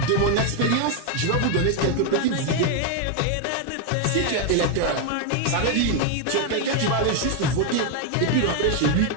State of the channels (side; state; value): both; different; correlation 0.01